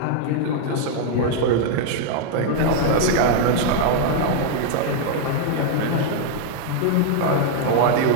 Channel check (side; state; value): both; different; correlation 0.00